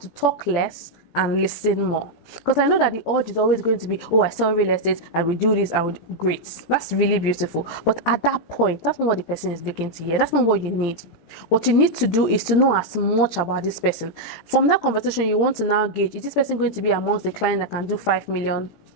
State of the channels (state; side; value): late; right; 18 ms